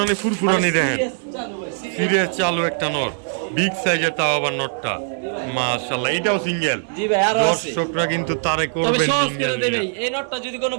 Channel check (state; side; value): silent; left; 60 dB below the other